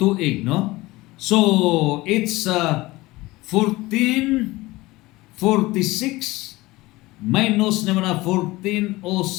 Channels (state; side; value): quieter; right; 20.0 dB